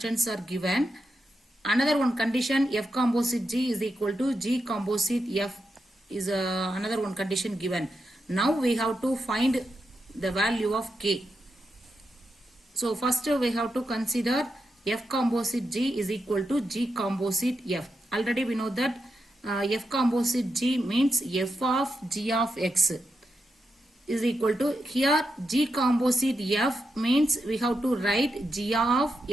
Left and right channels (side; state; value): both; normal; correlation 0.86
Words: are given. Another one condition, f composite g is equal to g composite f is another one condition given. Now we have to find the value of k. So first we have to consider f composite g is equal to g composite f. Already we know that f composite g means f of g of x is equal to, here g composite f means we have to write g of